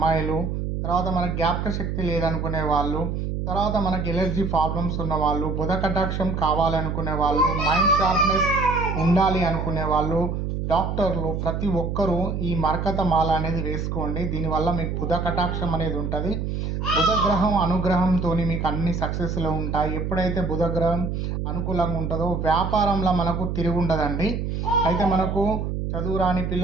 తర్వాత మనకు జ్ఞాపక శక్తి లేదనుకునే వాళ్ళు, తర్వాత మనకి ఎలర్జీ ప్రాబ్లమ్స్ ఉన్న వాళ్ళు, బుధ కటాక్షం కావాలనుకునే వాళ్ళు, మైండ్ షార్ప్నెస్ ఉండాలి అనుకునే వాళ్ళు, డాక్టర్లు ప్రతి ఒక్కరూ ఈ మరకత మాల అనేది వేసుకోండి. దీనివల్ల మీకు బుధ కటాక్షం అనేది ఉంటుంది. బుధ గ్రహం అనుగ్రహంతో మీకు అన్ని సక్సెస్లో ఉంటాయి. ఎప్పుడైతే బుధ గ్రహం అనుకూలంగా ఉంటుందో వ్యాపారంలో మనకు తిరిగి ఉండదండి. అయితే మనకు చదువు రాని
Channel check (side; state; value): right; noise; hum, 2 dB below the sound